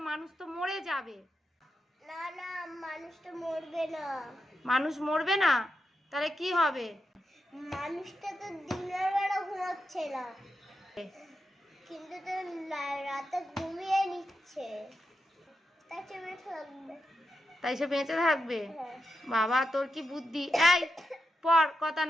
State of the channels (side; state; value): both; normal; correlation 0.86